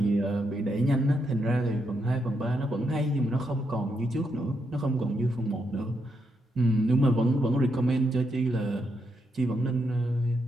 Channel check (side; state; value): both; normal; correlation 0.80